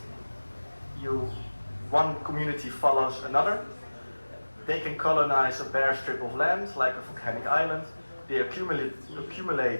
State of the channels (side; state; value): both; inverted; correlation -1.00